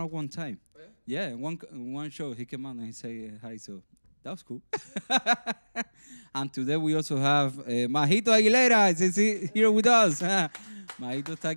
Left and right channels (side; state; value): both; inverted; correlation -1.00